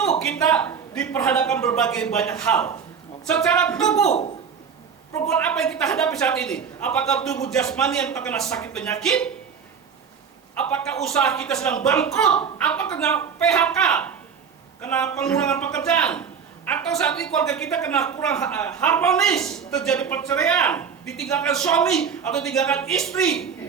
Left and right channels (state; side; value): quieter; left; 6.7 dB